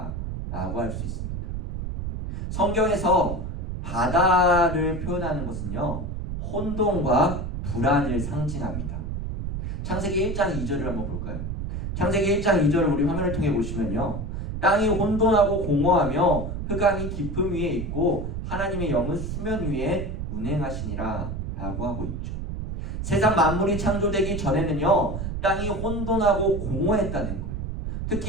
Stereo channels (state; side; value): noise; right; rumble, 4 dB below the sound